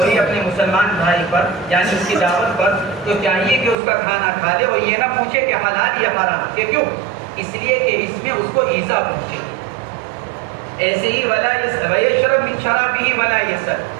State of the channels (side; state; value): left; drops out; at 3.8 s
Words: اپنے مسلمان بھائی پر یعنی اس کی دعوت پر، تو چاہیے کہ اس کا کھانا کھا لے اور یہ نہ پوچھے کہ حلال یا حرام. کہ کیوں؟ اس لیے کہ اس میں اس کو ایذا پہنچے. ایسے ہی ولا یشرب من شرابہ ولا یسر،